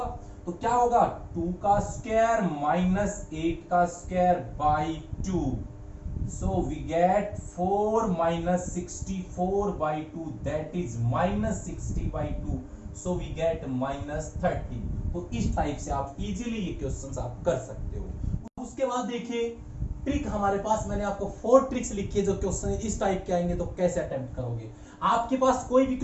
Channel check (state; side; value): identical; both; correlation 1.00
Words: तो क्या होगा, 2 का स्क्वायर माइनस 8 का square by 2, so we get 4 minus 64 by 2, that is minus 60 by 2, so we get minus 30। तो इस टाइप से आप इजीली ये क्वेश्चंस आप कर सकते हो। उसके बाद देखिए ट्रिक हमारे पास, मैंने आपको 4 ट्रिक्स लिखी है जो क्वेश्चन इस टाइप के आएंगे तो कैसे अटेम्प्ट करोगे। आपके पास कोई भी